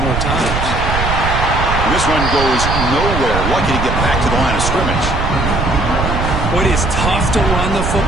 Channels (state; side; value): noise; right; rumble, 2 dB below the sound